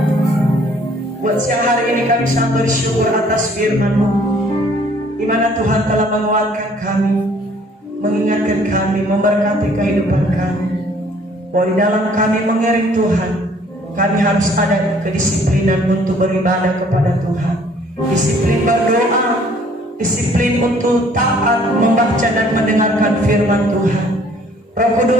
buat siang hari ini kami sangat bersyukur atas firman-Mu, di mana Tuhan telah menguatkan kami, mengingatkan kami, memberkati kehidupan kami. Bahwa di dalam kami mengiring Tuhan, kami harus ada kedisiplinan untuk beribadah kepada Tuhan, disiplin berdoa, disiplin untuk taat membaca dan mendengarkan firman Tuhan. Roh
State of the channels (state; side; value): normal; both; correlation 0.59